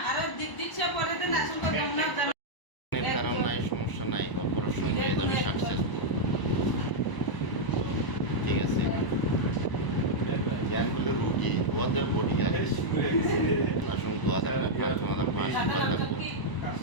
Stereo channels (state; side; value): late; right; 1.0 ms